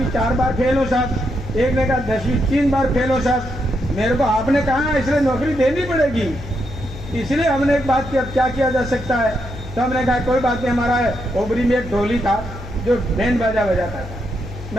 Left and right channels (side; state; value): left; noise; hum, 12 dB below the sound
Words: 4 बार फेल हो साहब, एक ने कहा 10वीं 3 बार फेल हो साहब। मेरे को आपने कहा इसलिए नौकरी देनी पड़ेगी। इसलिए हमने एक बात की, अब क्या किया जा सकता है? तो हमने कहा कोई बात नहीं, हमारा ओबरी में एक ढोली था जो बैंड बाजा बजाता था।